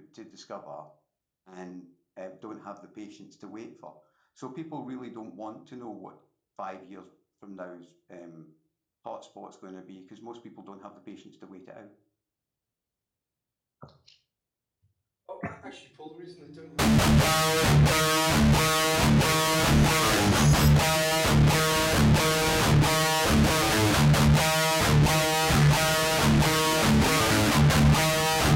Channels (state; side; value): identical; both; correlation 1.00